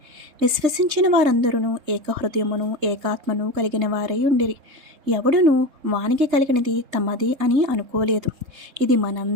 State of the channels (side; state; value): left; late; 3.8 ms